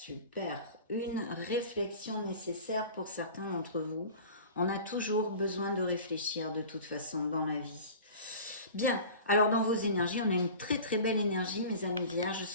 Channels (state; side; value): inverted; both; correlation -0.39